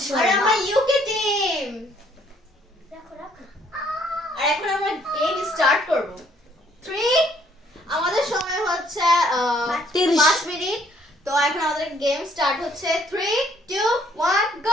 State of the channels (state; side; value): normal; both; correlation 0.64